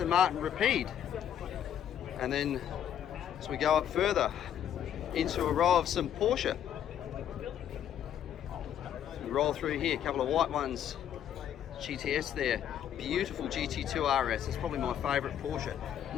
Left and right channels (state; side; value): quieter; right; 9.9 dB